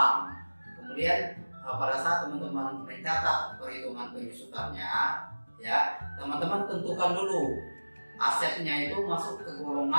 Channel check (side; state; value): both; inverted; correlation -1.00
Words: Kemudian pada saat teman-teman mencatat perhitungan penyusutannya ya, teman-teman tentukan dulu asetnya itu masuk ke